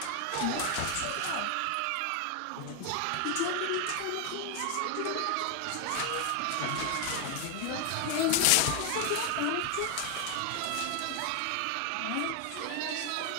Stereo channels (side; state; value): both; different; correlation 0.00